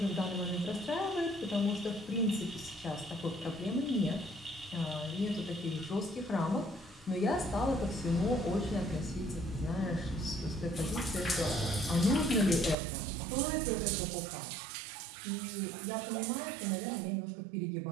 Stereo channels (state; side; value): drops out; left; at 12.8 s